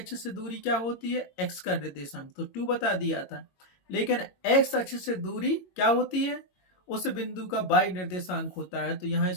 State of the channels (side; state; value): right; late; 22 ms